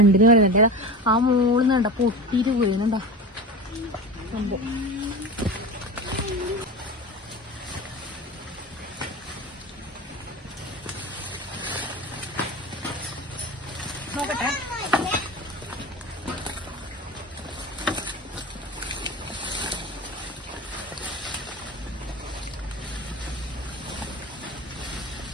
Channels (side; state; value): both; normal; correlation 0.29